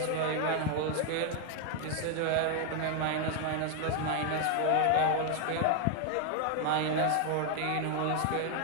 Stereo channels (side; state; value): both; different; correlation 0.01